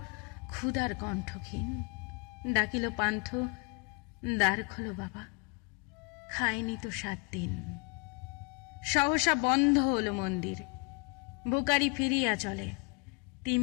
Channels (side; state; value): right; quieter; 33.1 dB